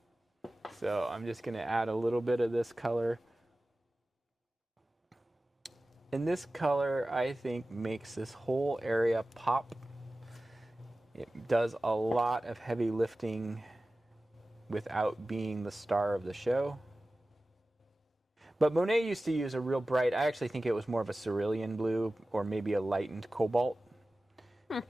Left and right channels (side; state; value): both; normal; correlation 0.96